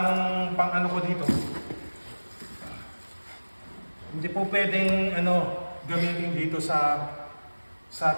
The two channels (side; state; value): both; inverted; correlation -1.00